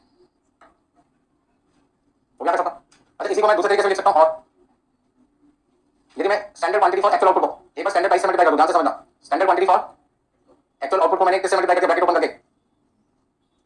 हो गया सकता। अच्छा इसी को मैं दूसरे तरीके से लिख सकता हूं और यदि मैं standard quantity for actual output को एक बार स्टैंडर्ड प्राइस से मल्टीप्लाई कर दूं ध्यान से समझना standard quantity for actual output को मैंने किससे मल्टीप्लाई करके ब्रैकेट ओपन करके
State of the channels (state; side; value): identical; both; correlation 1.00